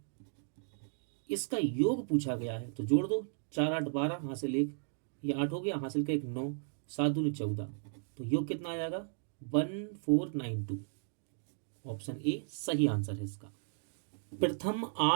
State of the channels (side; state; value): left; silent; digital silence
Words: इसका योग पूछा गया है, तो जोड़ दो, 4 8 12, हासिल 1, ये 8 हो गया, हासिल का 1 9, 7 दूनी 14, तो योग कितना आ जाएगा 1492। ऑप्शन ए सही आंसर है इसका। प्रथम